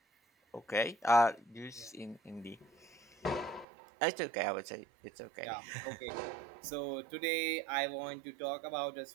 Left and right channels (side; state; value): left; drops out; at 3.7 s